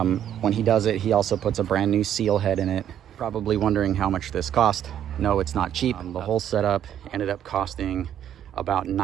he does it, he also puts a brand new seal head in it. Probably wondering how much this cost. No, it's not cheap. The whole setup ended up costing about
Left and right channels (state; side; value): quieter; left; 10.2 dB